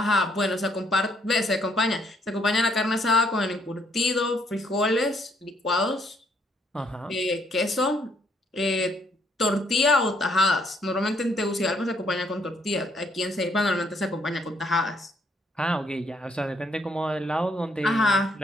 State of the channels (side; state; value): both; normal; correlation 0.69